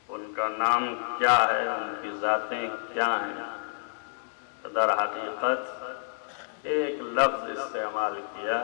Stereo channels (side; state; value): right; silent; 59 dB below the other